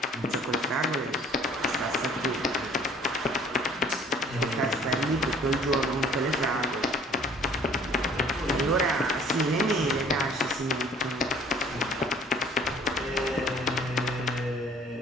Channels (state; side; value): normal; both; correlation 0.53